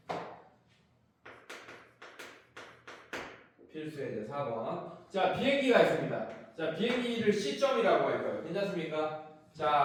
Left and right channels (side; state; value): both; identical; correlation 1.00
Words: 필수의 이제 4번. 자, 비행기가 있습니다. 자, 비행기를 C점이라고 할 거예요. 괜찮습니까?